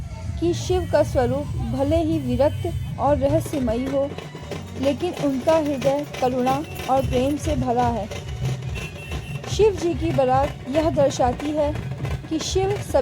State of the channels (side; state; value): both; identical; correlation 1.00